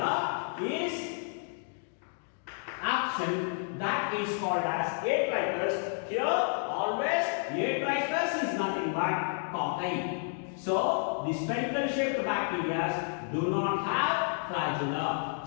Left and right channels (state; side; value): silent; right; 57 dB below the other